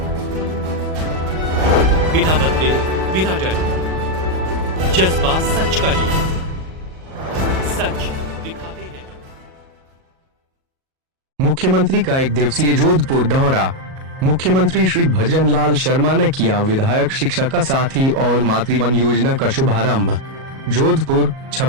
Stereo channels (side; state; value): left; late; 37 ms